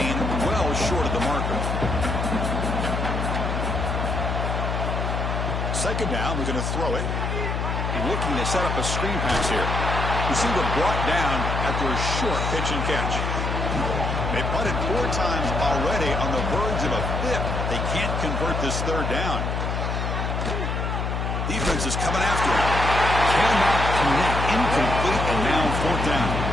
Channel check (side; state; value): left; noise; hum, 1 dB below the sound